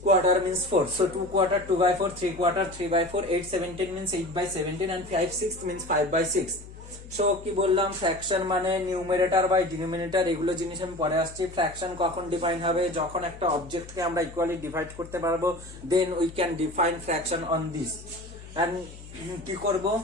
Quarter means 4. So 2/4 2/4, 3/4 3/4, 8/17 means 8/17 and 5/6 means 5/6. So কি বললাম, ফ্র্যাকশন মানে নিউমারেটর বাই ডিনোমিনেটর, এগুলো জিনিস আমি পরে আসছি। ফ্র্যাকশন কখন ডিফাইন হবে, যখন একটা অবজেক্টকে আমরা ইকুয়ালি ডিভাইড করতে পারবো, then we can define fraction on this. And কি করব,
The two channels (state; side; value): noise; left; hum, 16 dB below the sound